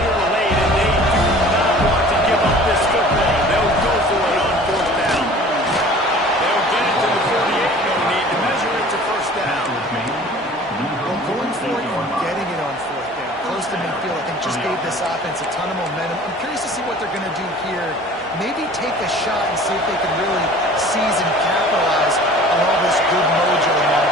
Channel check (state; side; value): normal; both; correlation 0.46